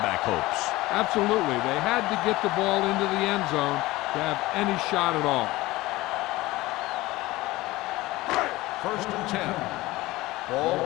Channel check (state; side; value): quieter; right; 19.0 dB